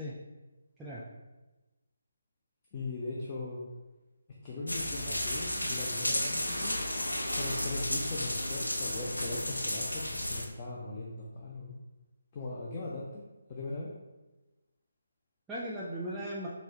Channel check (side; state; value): both; inverted; correlation -0.87